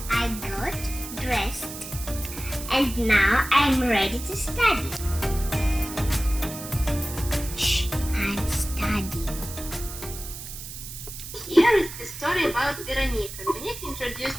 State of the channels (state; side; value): noise; right; hiss, 11 dB below the sound